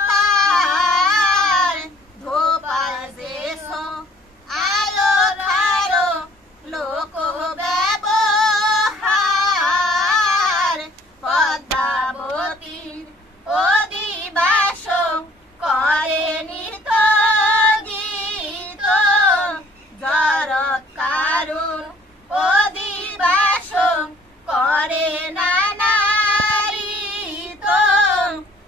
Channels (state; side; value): normal; both; correlation 0.57